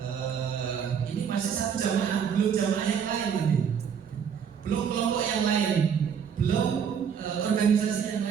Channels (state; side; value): quieter; left; 7.4 dB